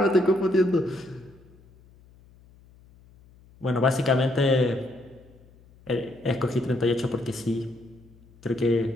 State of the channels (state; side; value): noise; left; hum, 27 dB below the sound